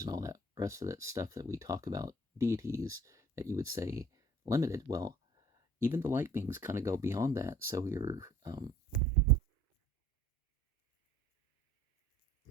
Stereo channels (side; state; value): both; normal; correlation 0.53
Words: and all that rest of that stuff that we talk about, deities, that you would say limited. Well, even the light beings kind of go beyond that. So you're